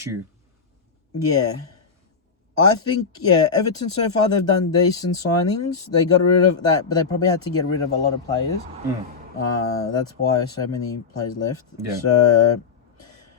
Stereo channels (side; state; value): right; quieter; 5.4 dB